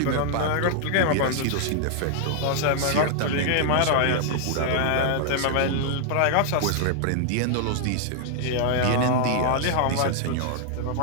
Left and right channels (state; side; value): different; both; correlation 0.00